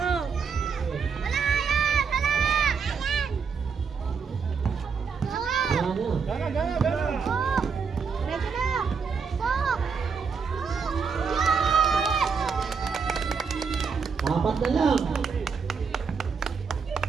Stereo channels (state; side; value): quieter; left; 5.8 dB